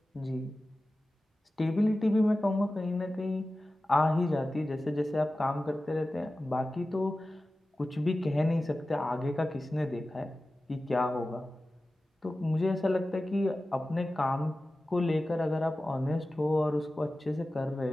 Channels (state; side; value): normal; both; correlation 0.95